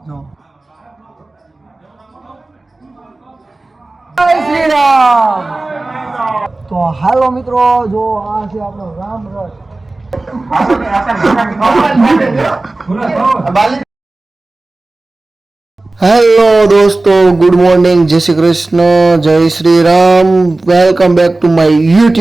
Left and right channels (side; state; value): left; quieter; 3.0 dB